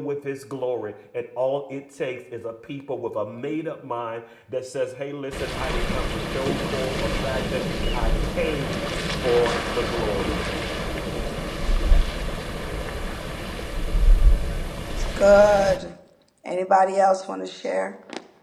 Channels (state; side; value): identical; both; correlation 1.00